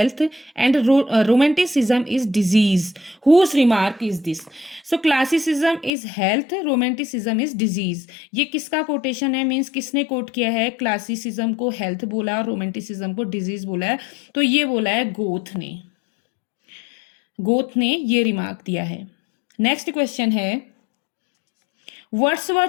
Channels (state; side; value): drops out; right; at 5.9 s